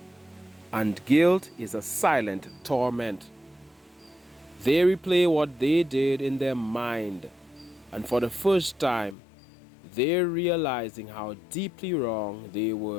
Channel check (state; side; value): drops out; right; at 9.2 s